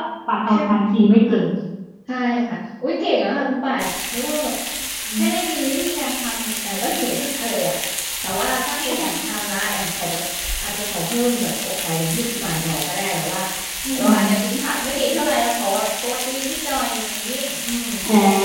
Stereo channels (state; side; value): identical; both; correlation 1.00